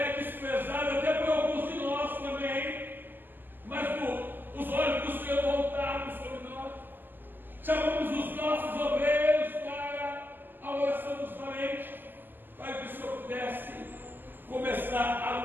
desprezada até por alguns de nós também, mas os olhos do Senhor voltados sobre nós. Chamamos os nossos obreiros para a oração dos valentes, para que o Senhor pudesse começar a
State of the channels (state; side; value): late; left; 0.090 ms